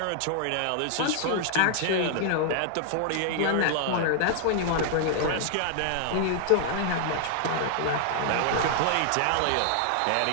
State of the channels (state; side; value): different; both; correlation 0.00